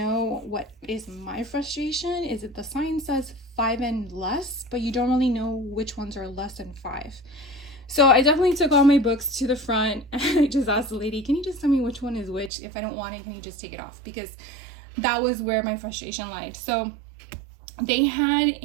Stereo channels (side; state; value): left; drops out; at 12.5 s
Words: what is my frustration is that the sign says 5 and less, but you don't really know which ones are less than 5. So I definitely took all my books to the front and I just asked the lady, can you just tell me which one is which? If I don't want it, can you just take it off? Because that was where my frustration lied. So they had